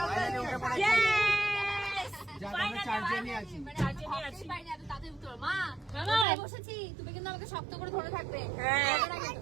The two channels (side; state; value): left; drops out; at 6.2 s